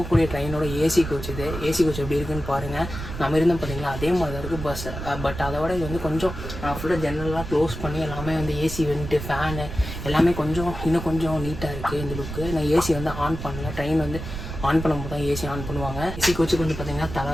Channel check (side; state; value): right; noise; rumble, 8 dB below the sound